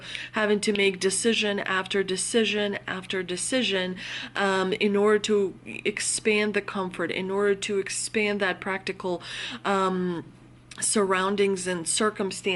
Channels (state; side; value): identical; both; correlation 1.00